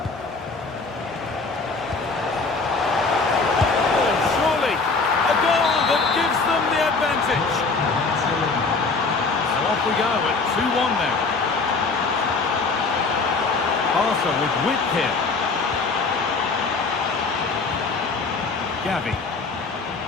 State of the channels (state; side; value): quieter; right; 4.1 dB